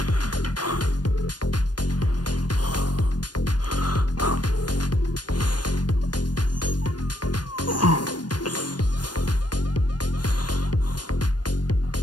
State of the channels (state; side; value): late; right; 0.69 ms